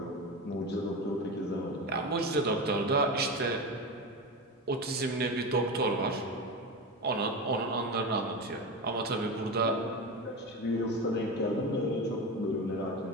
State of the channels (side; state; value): both; normal; correlation 0.22